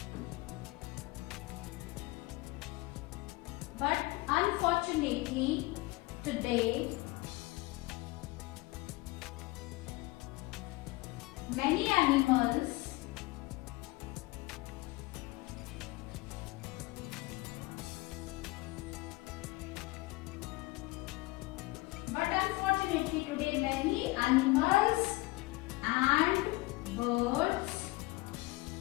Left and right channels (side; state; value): right; quieter; 21.9 dB